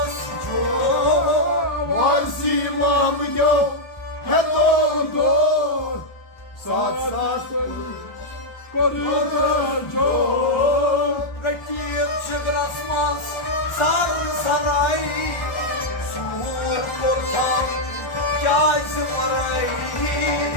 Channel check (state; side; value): late; right; 1.4 ms